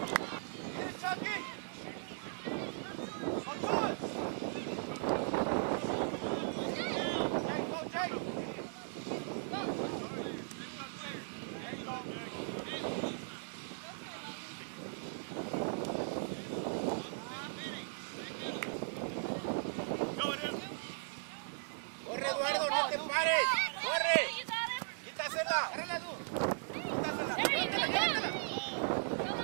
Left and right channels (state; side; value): silent; left; digital silence